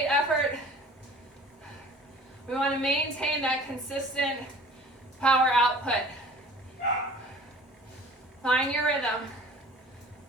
effort. We want to maintain that consistent power output. Find your rhythm.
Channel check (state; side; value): normal; both; correlation 0.47